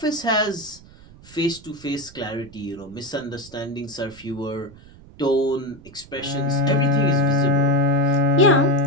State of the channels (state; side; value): noise; right; rumble, 22 dB below the sound